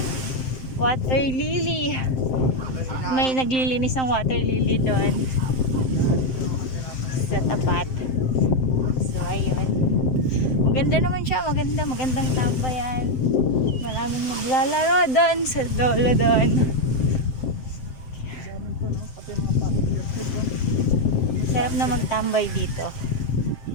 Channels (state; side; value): late; right; 7.7 ms